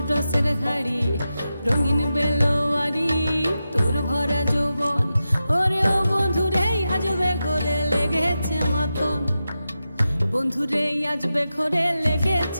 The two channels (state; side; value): inverted; both; correlation -0.91